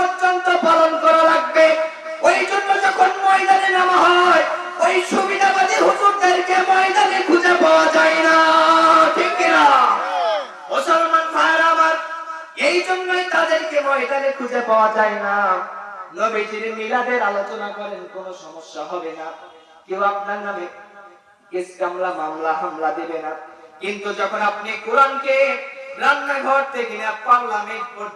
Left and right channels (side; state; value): both; identical; correlation 1.00